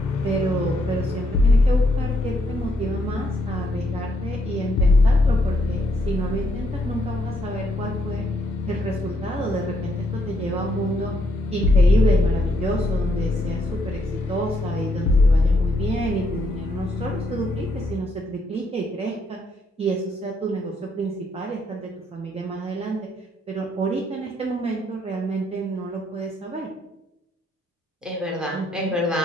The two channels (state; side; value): normal; both; correlation 0.74